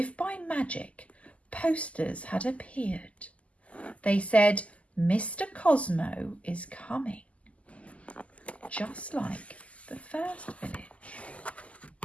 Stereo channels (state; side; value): late; right; 0.066 ms